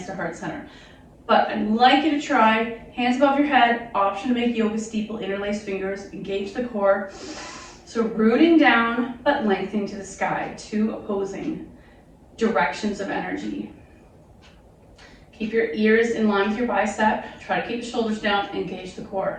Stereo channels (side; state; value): both; identical; correlation 1.00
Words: to heart center. But I'd like you to try hands above your head, option to make yoga steeple, interlace fingers, engage the core. So rooting down, but lengthening to the sky, 2 opposing directions of energy. Keep your ears in line with your bicep. Try to keep the shoulders down, engage the